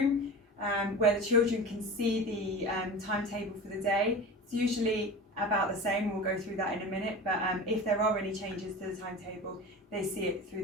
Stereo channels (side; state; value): both; normal; correlation 0.32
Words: where the children can see the timetable for the day. It's usually about the same, we'll go through that in a minute, but if there are any changes to the timetable, they see it